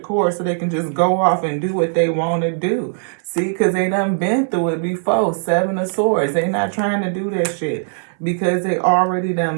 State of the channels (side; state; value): left; silent; 61 dB below the other